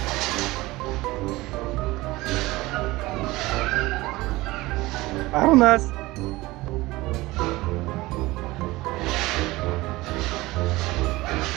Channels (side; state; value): left; quieter; 19.8 dB